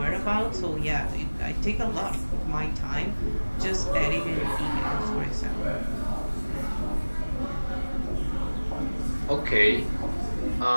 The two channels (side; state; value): both; inverted; correlation -1.00